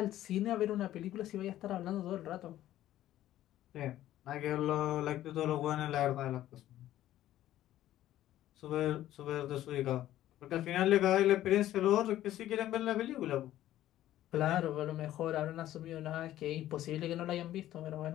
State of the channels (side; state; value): right; quieter; 13.4 dB